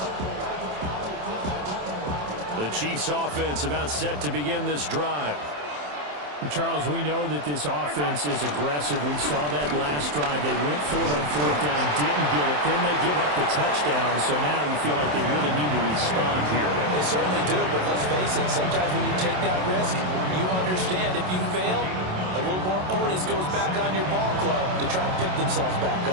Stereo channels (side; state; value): left; late; 27 ms